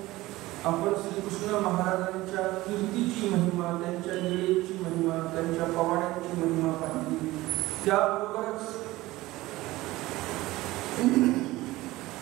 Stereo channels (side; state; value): left; quieter; 18.4 dB